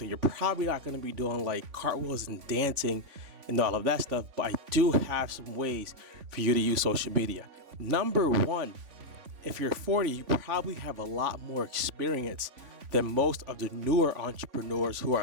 you're probably not going to be doing like cartwheels and dancing and all of that stuff. But I do have some ways for you to use social media. Number one, if you're 40, you probably have a lot more experience than most of the newer entrepreneurs who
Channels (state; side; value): late; left; 3.5 ms